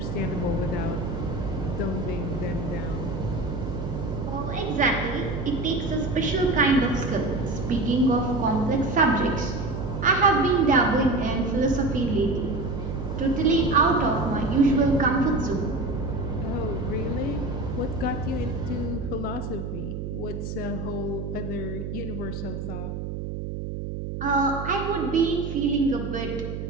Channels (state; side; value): noise; right; hum, 5 dB below the sound